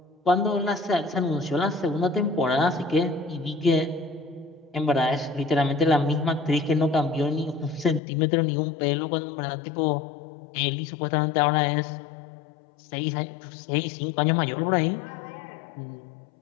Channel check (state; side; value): drops out; right; at 8.0 s